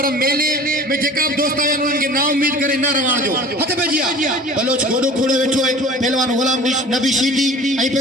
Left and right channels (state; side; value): normal; both; correlation 0.43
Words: मेले में जेका बि दोस्त आहिनि उन्हनि खे ना उम्मीद करे न रवण जो हथ पे जी बलोच गोडो खोड़े वेठो आहे पहलवान गुलाम नबी शीदी ऐं